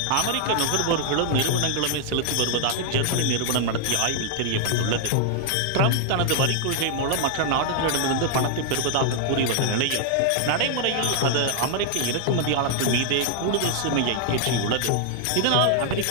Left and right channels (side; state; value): both; different; correlation 0.00